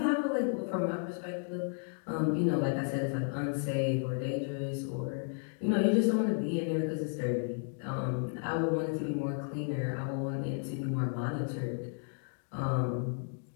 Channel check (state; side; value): silent; right; 56 dB below the other